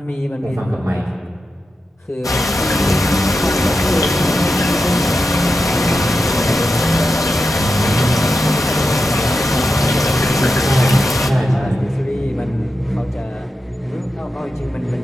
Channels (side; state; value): both; normal; correlation 0.89